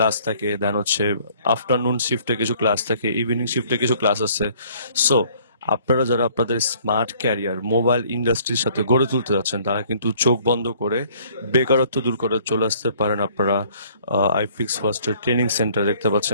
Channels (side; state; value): both; inverted; correlation -0.58